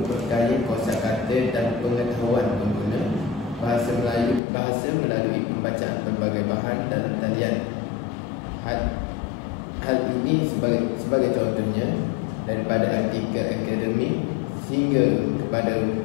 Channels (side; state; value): right; drops out; at 4.4 s